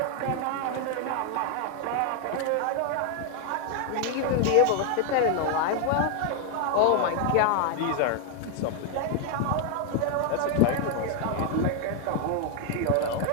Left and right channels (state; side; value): different; both; correlation 0.00